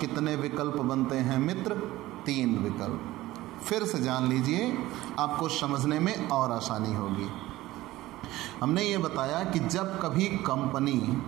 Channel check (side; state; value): left; quieter; 17.0 dB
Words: कितने विकल्प बनते हैं मित्र? 3 विकल्प। फिर से जान लीजिए, आपको समझने में और आसानी होगी। हमने ये बताया कि जब कभी कंपनी